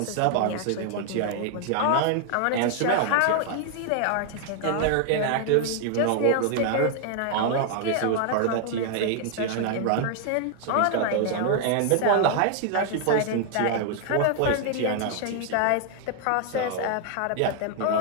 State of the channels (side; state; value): both; different; correlation 0.00